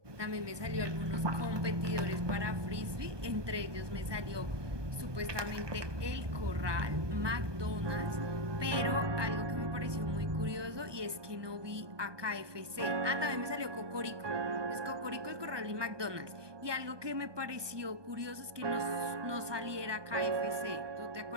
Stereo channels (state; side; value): late; left; 1.2 ms